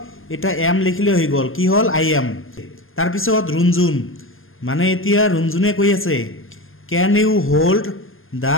এটা এম লিখিলে হৈ গ'ল, কি হ'ল আই এম। তাৰপিছত ৰুণজুন, মানে এতিয়া ৰুণজুনে কৈ আছে can you hold the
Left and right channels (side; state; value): right; late; 0.60 ms